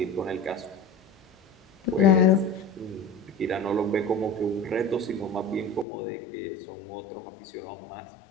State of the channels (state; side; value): drops out; right; at 5.9 s